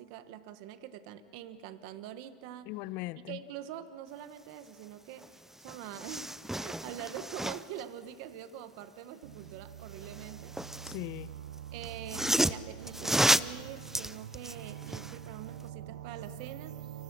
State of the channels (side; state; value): both; normal; correlation 0.64